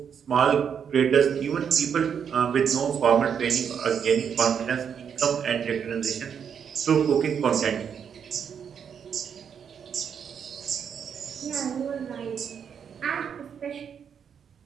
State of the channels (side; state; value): left; quieter; 7.5 dB